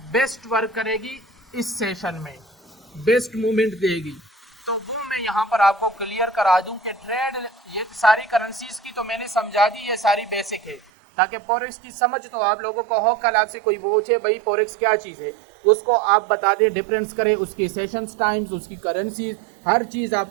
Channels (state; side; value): drops out; left; at 10.8 s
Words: बेस्ट वर्क करेगी इस सेशन में, बेस्ट मूवमेंट देगी। तो वो मैं यहाँ पर आपको क्लियर करा दूं कि ट्रेड, ये सारी करेंसीज की तो मैंने समझा दी, ये सारी बेसिक है, ताकि फॉरेक्स की समझ तो आप लोगों को हो। कल आपसे कोई पूछे भाई फॉरेक्स क्या चीज़ है, उसको आप बता दें, डिफरेंस करें, उसकी सेशंस टाइम्स, उसकी करेंसीज, हर चीज़